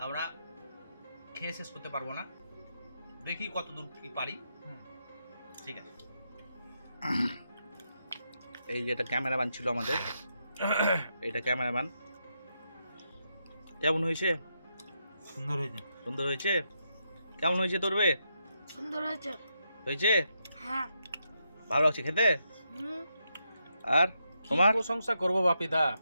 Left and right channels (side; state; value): both; inverted; correlation -0.82